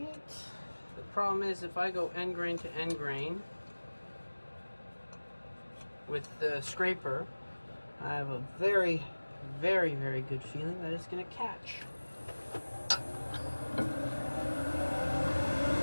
The problem is if I go end grain to end grain with the scraper, I have a very, very, very good feeling that it's going to catch.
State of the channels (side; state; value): both; inverted; correlation -1.00